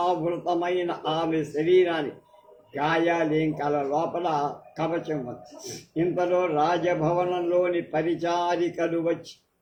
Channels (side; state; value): both; identical; correlation 1.00